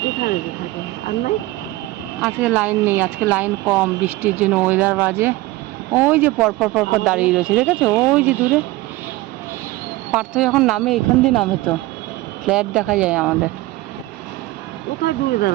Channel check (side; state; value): left; quieter; 19.0 dB